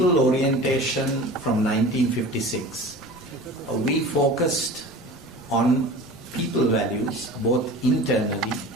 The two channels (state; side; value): normal; both; correlation 0.37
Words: orientation from 1956, we focused on people values both internally